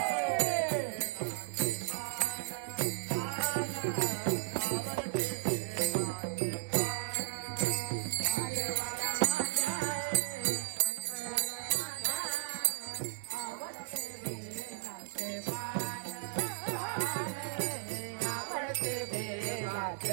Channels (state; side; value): silent; left; 54 dB below the other